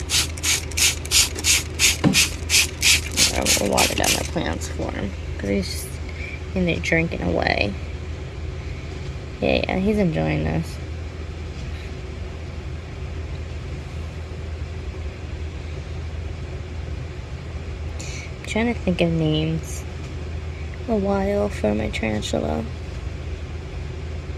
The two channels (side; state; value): both; identical; correlation 1.00